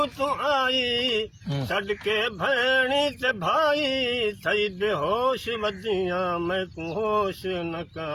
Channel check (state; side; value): identical; both; correlation 1.00